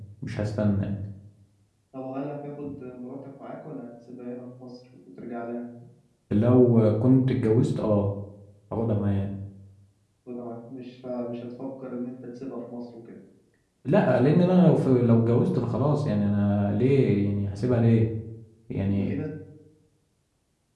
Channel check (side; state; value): both; identical; correlation 1.00